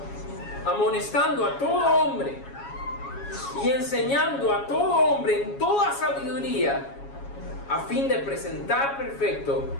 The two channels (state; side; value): late; right; 7.2 ms